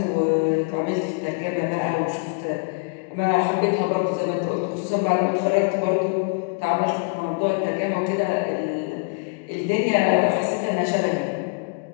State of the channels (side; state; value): right; quieter; 34.3 dB